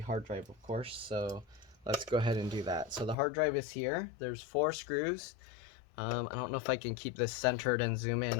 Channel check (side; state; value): right; drops out; at 3.2 s